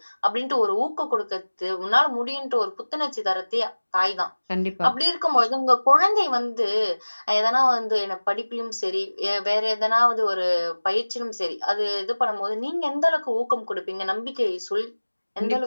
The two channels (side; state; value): both; inverted; correlation -1.00